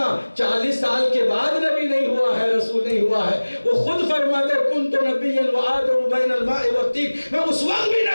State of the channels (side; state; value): both; inverted; correlation -1.00